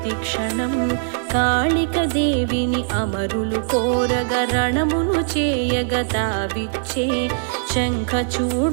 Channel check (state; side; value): silent; left; 65 dB below the other